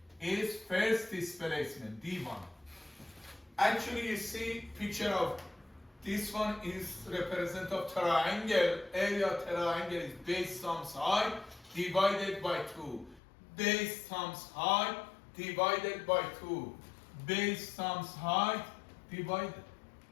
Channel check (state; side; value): drops out; right; at 13.2 s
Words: is first displacement, D1. Actually, you see picture of this one is represent of triangle. Area of triangle is base times height divided by 2. Base times height divided by 2. Base times height divided